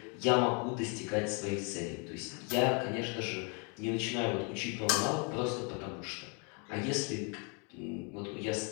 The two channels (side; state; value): right; quieter; 34.8 dB